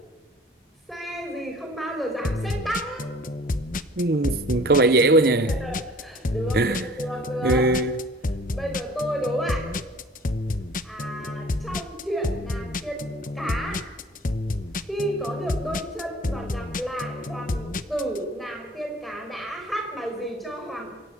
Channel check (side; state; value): both; normal; correlation 0.49